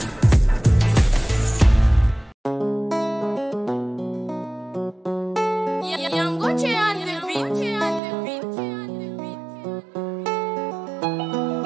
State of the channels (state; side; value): drops out; left; at 8.0 s